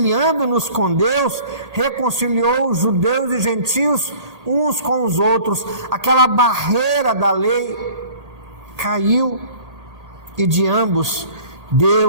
com Deus, reconciliou os judeus e gentios uns com os outros. Aquela barreira da lei caiu, e de ambos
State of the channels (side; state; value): left; late; 1.8 ms